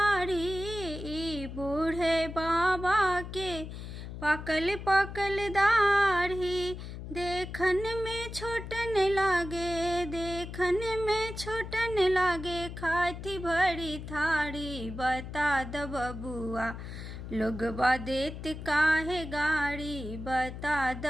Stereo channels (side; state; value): left; noise; hum, 9 dB below the sound